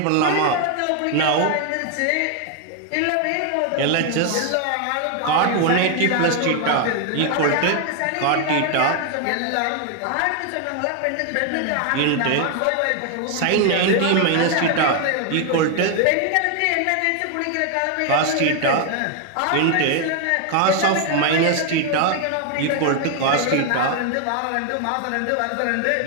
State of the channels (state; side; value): different; both; correlation 0.01